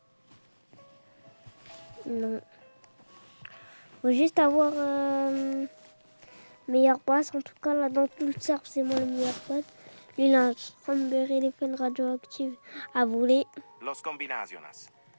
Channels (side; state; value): both; inverted; correlation -1.00